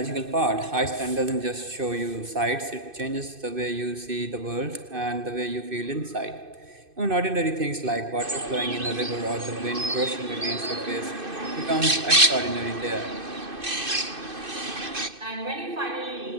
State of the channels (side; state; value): left; late; 2.6 ms